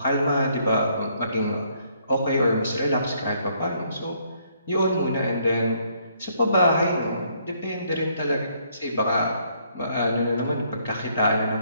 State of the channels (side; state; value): both; inverted; correlation -0.68